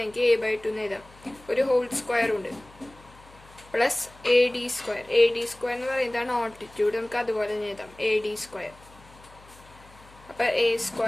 എനിക്ക് a/2 എന്ന് എഴുതാം. ഒരു ഹോൾ സ്ക്വയർ ഉണ്ട് plus A D square. A D square എന്ന് പറയുന്നതാണ് ഓൾട്ടിറ്റ്യൂഡ്, നമുക്ക് അതുപോലെ തന്നെ എഴുതാം എ ഡി സ്ക്വയർ. അപ്പോൾ A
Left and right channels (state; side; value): noise; left; hum, 24 dB below the sound